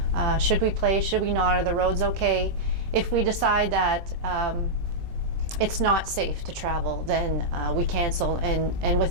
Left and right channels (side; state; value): left; late; 23 ms